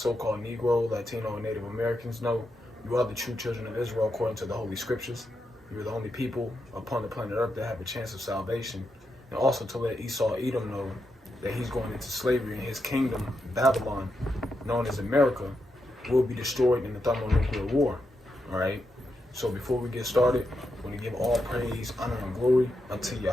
Negro, Latino, and Native Americans know you are the true children of Israel according to the Holy Scriptures. You are the only people upon the planet Earth that have a chance of salvation. And also to let Esau Edom know that he's going into slavery and his kingdom, Babylon, known as America, will be destroyed in the thermonuclear war. All right? So before we get started, we're going to give all praise, honor, and glory unto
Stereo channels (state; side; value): normal; both; correlation 0.85